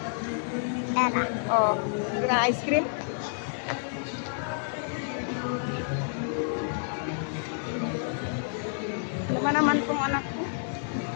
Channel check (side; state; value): right; silent; digital silence